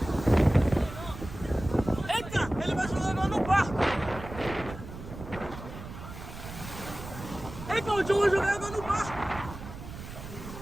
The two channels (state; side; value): noise; right; rumble, 12 dB below the sound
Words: Eita, ele vai jogar no barco. Eita, o John vai jogar no barco.